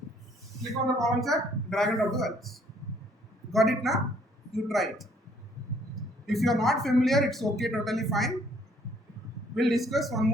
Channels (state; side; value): normal; both; correlation 0.63